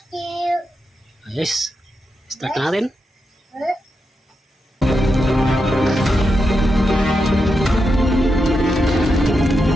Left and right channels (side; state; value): both; normal; correlation 0.86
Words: you. Yes. Start na natin.